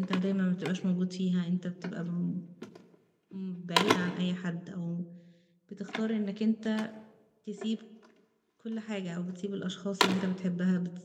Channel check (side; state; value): both; identical; correlation 1.00